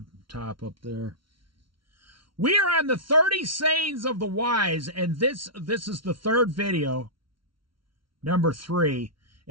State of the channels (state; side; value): late; left; 0.74 ms